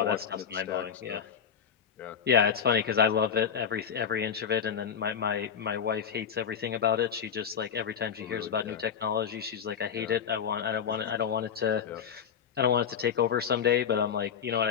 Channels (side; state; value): right; quieter; 7.6 dB